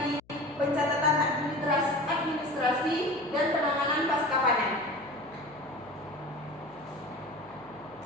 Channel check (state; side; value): noise; left; hum, 29 dB below the sound